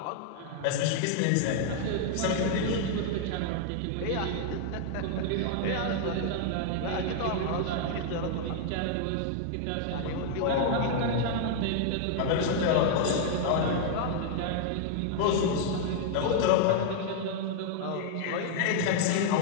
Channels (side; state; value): both; different; correlation 0.00